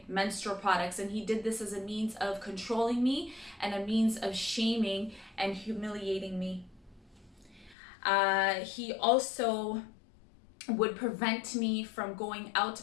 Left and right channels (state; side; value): drops out; right; at 7.8 s